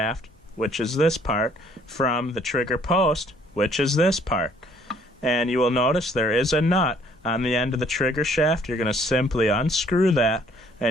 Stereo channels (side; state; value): both; normal; correlation 0.61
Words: which is this part, from the trigger post, which is this part. And you will notice there is a nut on the end of the trigger shaft. You're going to simply unscrew that,